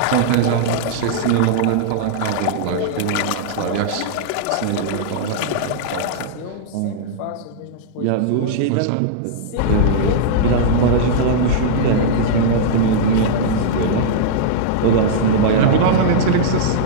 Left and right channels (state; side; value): different; both; correlation -0.02